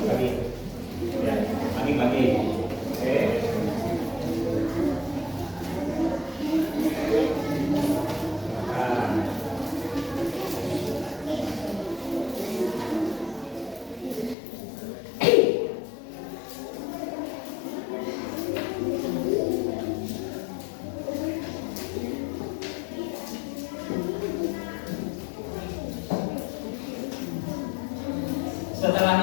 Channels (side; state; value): right; drops out; at 14.4 s